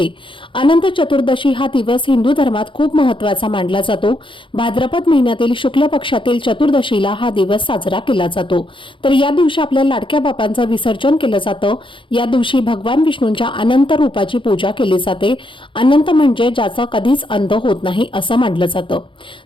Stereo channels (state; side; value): late; right; 0.25 ms